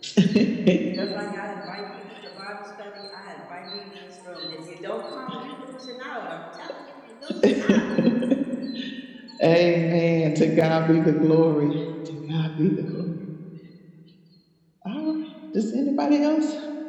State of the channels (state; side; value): identical; both; correlation 1.00